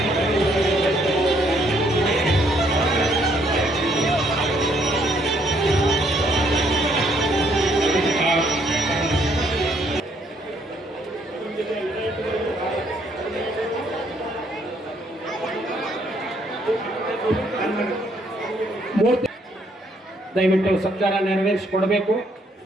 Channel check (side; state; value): both; normal; correlation 0.69